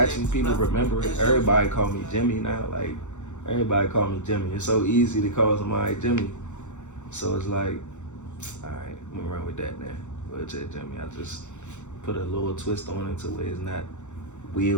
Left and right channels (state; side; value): late; right; 0.84 ms